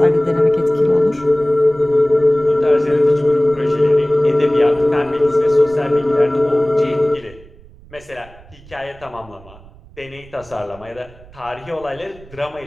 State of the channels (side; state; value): right; noise; rumble, 23 dB below the sound